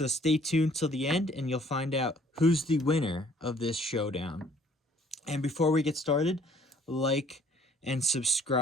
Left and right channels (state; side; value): normal; both; correlation 0.58